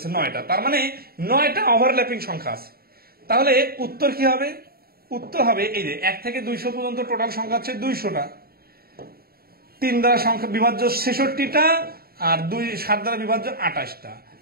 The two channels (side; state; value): left; late; 0.44 ms